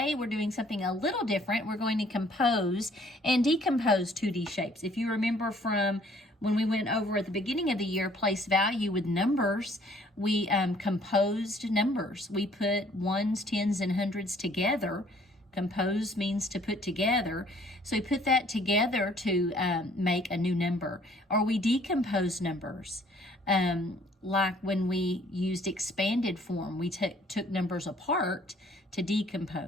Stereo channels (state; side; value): normal; both; correlation 0.59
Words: we're doing something a little different. We're going to compose and decompose 2D shapes. If you remember from when we went over at the beginning of the year, place value with numbers, we composed numbers. We put ones, tens, and hundreds together. Compose means to put together. So we put that together to make a new number. Or we decompose numbers. Like when we used expanded form, we took numbers apart to